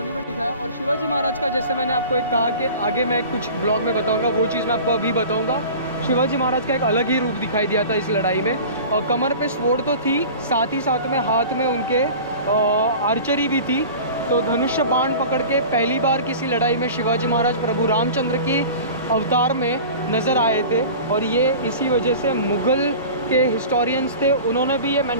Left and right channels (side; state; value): both; inverted; correlation -0.38